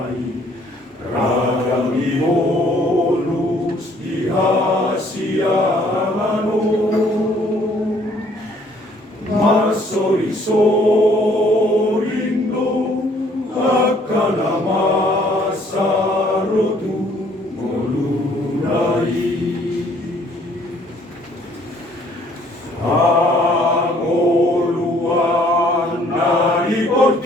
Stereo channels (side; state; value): both; normal; correlation 0.61